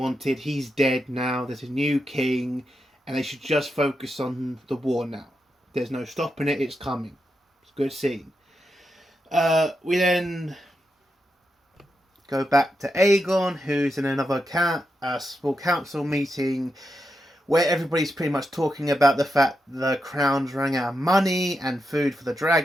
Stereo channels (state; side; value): normal; both; correlation 0.86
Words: He's dead now. There's a new king. And they should just focus on the war now. There's no stopping it. It's coming. It's a good scene. We then go back to Aegon, who's in another small council meeting, where everybody's pretty much talking about the fact the crown's running out of money and food for the